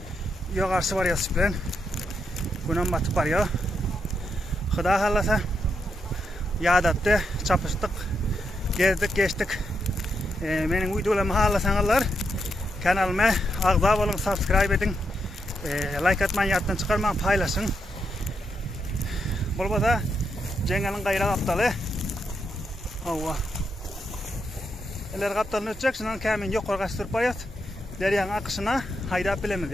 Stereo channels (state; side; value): normal; both; correlation 0.82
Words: yoğarşı varıyoruz bilen günem batıp varıyor Hıda halasa yadattı çapıştık gezdik geçtik benim videolarımı halasanlar kanalıma ağza olun subscribe edin like atmayın yattan çıkarmayın paylaşın Bolbada Cengel'in gayra kaptalı hava eller kaptalını ötecek şundan Kamil yok korkaç sürüp barıyoruz deryanın akışına haydap bilemiz